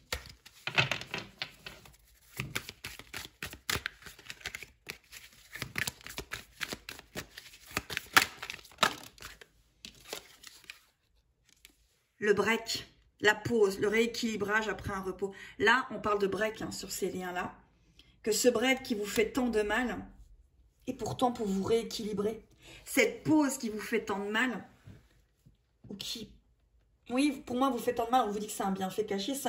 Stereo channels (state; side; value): identical; both; correlation 1.00